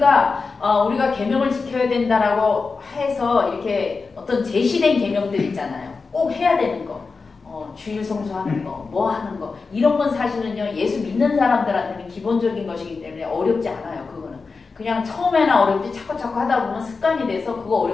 우리가 계명을 지켜야 된다라고 해서 이렇게 어떤 제시된 계명들 있잖아요. 꼭 해야 되는 거. 주일 성수하는 거, 뭐 하는 거 이런 건 사실은요 예수 믿는 사람들한테는 기본적인 것이기 때문에 어렵지 않아요. 그거는 그냥 처음에는 어렵지 자꾸 하다 보면 습관이 돼서 그거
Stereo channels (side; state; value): right; quieter; 4.4 dB